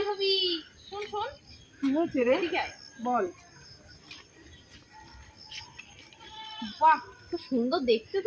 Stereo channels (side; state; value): both; identical; correlation 1.00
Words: শোন শোন। কি হচ্ছে রে? ঠিক আছে বল। বাহ, তো সুন্দর দেখতে,